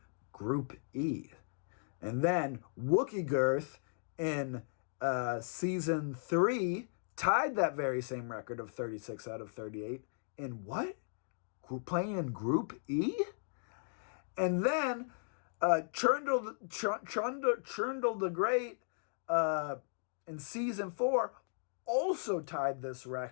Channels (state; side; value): silent; right; digital silence